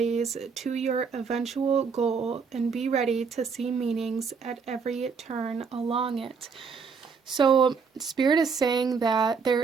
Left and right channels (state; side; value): quieter; left; 5.6 dB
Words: to your eventual goal, and be ready to see meanings at every turn along it. So Spirit is saying that